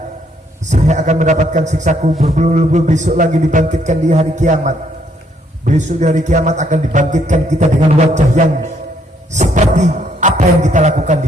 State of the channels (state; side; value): normal; both; correlation 0.69